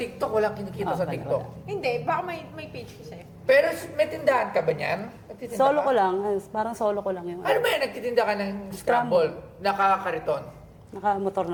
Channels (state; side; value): identical; both; correlation 1.00